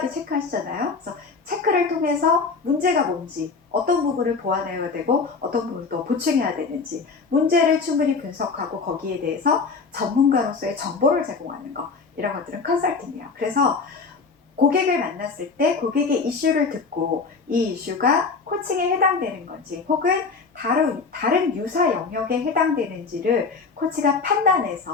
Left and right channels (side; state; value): right; quieter; 4.7 dB